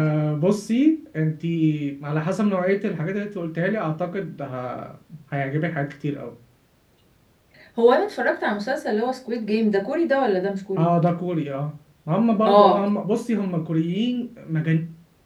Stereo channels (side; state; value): both; identical; correlation 1.00